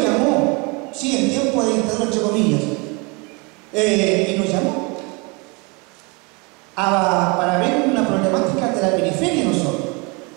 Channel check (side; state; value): left; quieter; 29.3 dB